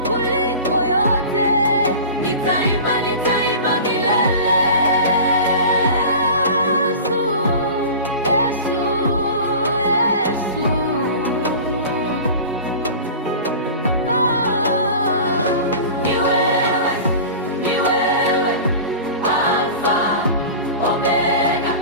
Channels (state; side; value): inverted; both; correlation -0.35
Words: kuliko yote. Nitaimba, nitaimba milele.